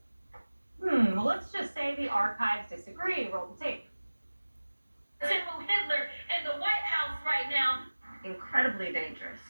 Well, let's just say the archives disagree. Roll the tape. Hitler in the White House right now. Incredibly dangerous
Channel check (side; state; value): both; inverted; correlation -1.00